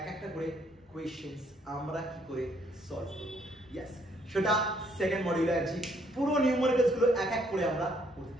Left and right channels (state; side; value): normal; both; correlation 0.68